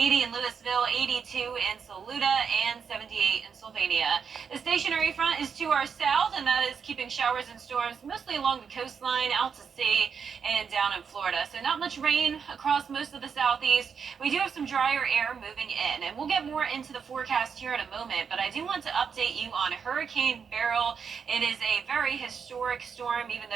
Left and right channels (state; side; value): quieter; left; 6.5 dB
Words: in Louisville, 82 in Saluda, and 78 in Sylvania. The stationary front is to our south, and that is keeping showers and storms mostly along the coastline, out to sea, and down in Florida. So not much rain across most of the southeast. We do have some drier air moving in, and we'll get more into the forecast here in a moment, but I do want to update you on Hurricane Beryl. It is a very historic storm, even